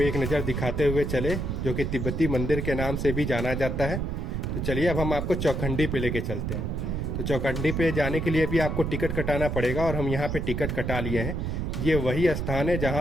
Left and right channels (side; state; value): right; noise; rumble, 2 dB below the sound